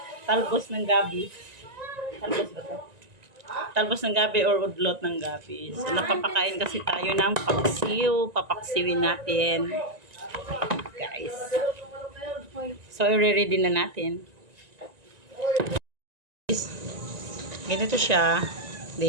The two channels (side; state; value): left; late; 1.9 ms